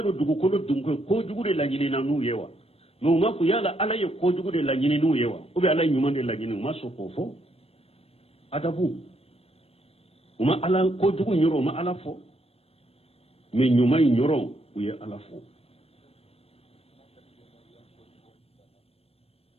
do dugu ko dunko ko jugu de la nyini na nu yewa no ma ku yala ala ye ko jugu de la nyini nu yewa o be ala nyuma de la nyini maso ko fo adabu uma ala ko jugu nyoro ma ala fo me nyuma nyoro uye ala fo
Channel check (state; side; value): late; right; 0.29 ms